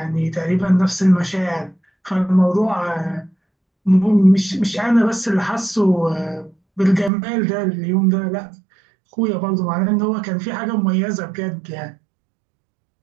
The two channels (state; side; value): drops out; left; at 7.1 s